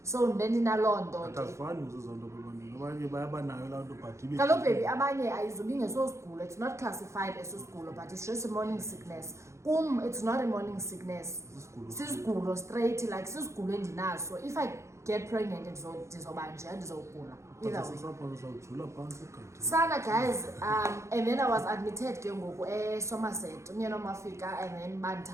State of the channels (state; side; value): late; left; 0.14 ms